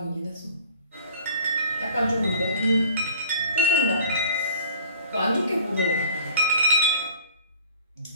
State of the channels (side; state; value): both; inverted; correlation -0.49